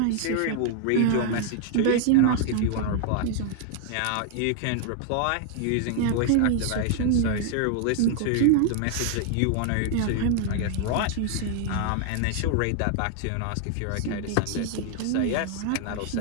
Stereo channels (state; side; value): different; both; correlation 0.00